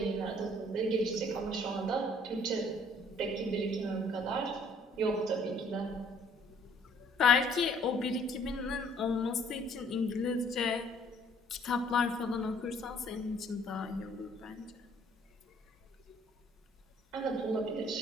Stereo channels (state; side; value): normal; both; correlation 0.60